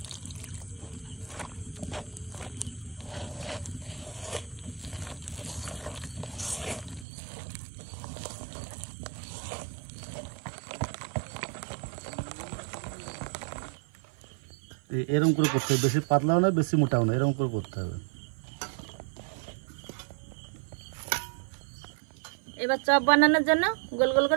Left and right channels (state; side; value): drops out; left; at 7.1 s